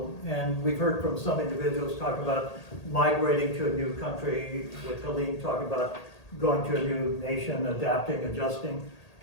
and we've heard from some individuals talk about migrating to a new country, with Helene talking about going to a new nation, adapting, adjusting.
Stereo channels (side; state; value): right; late; 1.8 ms